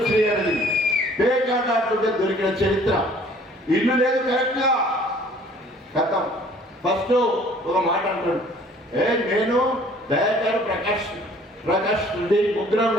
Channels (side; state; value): both; normal; correlation 0.54